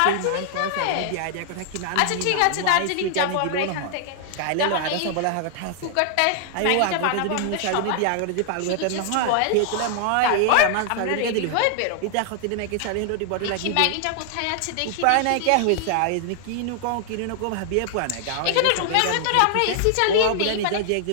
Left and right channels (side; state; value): both; different; correlation -0.01